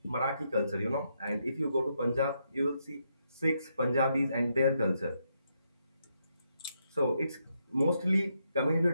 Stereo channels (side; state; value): both; inverted; correlation -0.79